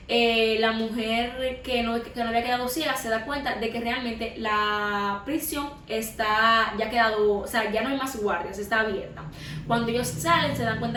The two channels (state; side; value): identical; both; correlation 1.00